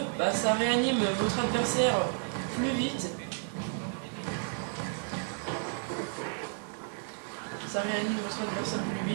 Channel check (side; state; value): left; silent; 56 dB below the other